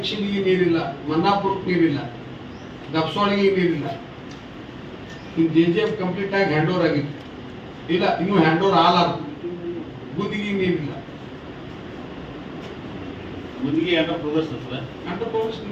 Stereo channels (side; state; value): both; identical; correlation 1.00